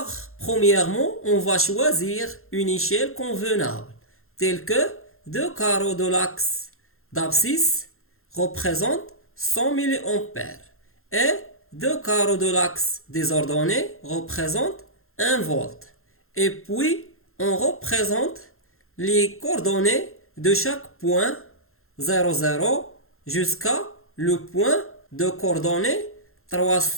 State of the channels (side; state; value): right; late; 0.62 ms